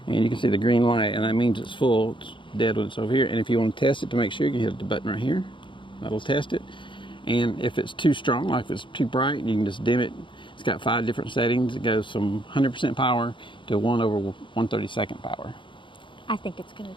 and you can see the green light, and that means it's full. It's dead when it's over here. And if you want to test it to make sure, you can hit the button right here. That'll test it. And if it's too strong, like if it's too bright, you can just dim it. It's got 5 different settings. It goes from 100% power to 1/132nd power. I think it's going to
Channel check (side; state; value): right; late; 0.24 ms